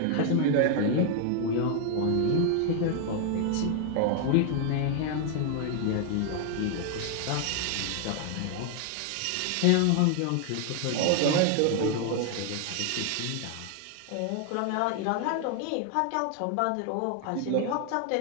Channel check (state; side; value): different; both; correlation 0.00